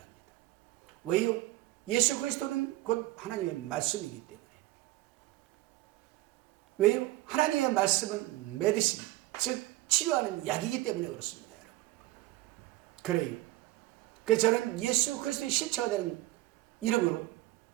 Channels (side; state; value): left; quieter; 18.0 dB